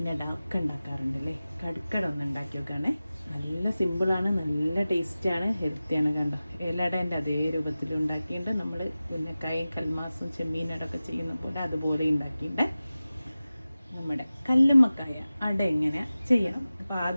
ഒക്കെ ഉണ്ടാക്കാറുണ്ടല്ലേ. കടുക്കട ഒന്ന് ഉണ്ടാക്കി നോക്കുകയാണേ. നല്ല സിമ്പിളാണ്, നല്ല ടേസ്റ്റാണ്, ഹെൽത്തിയാണ്. കണ്ടോ, ഏലടേൻ്റെ അതേ രൂപത്തിൽ ഉണ്ടാക്കിയിട്ട് നമ്മൾ പിന്നെ കൽമാസും ചെമ്മീനടൊക്കെ ചെയ്യുന്ന പോലെ അതുപോലെ ഉണ്ടാക്കിയിട്ട് നമ്മുടെ കല്ലുമ്മക്കായ അട എങ്ങനെ ചെയ്യാം. അപ്പോൾ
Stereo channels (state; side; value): inverted; both; correlation -0.96